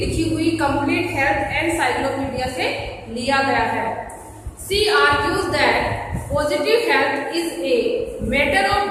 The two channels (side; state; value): both; identical; correlation 1.00